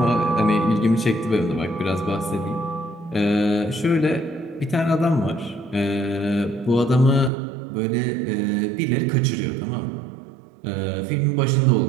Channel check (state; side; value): drops out; left; at 7.3 s